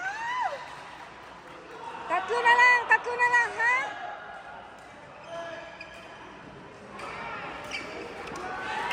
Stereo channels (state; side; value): identical; both; correlation 1.00